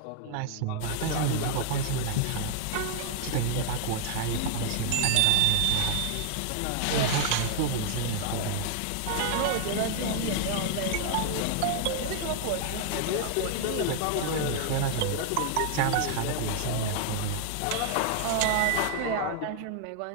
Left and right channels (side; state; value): both; different; correlation 0.00